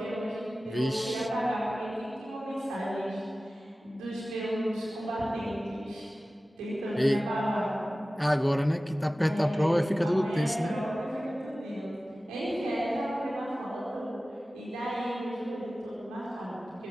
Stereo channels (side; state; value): both; normal; correlation 0.96